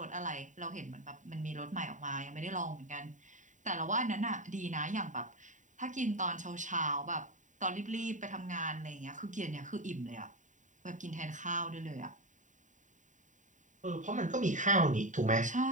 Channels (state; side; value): late; left; 0.36 ms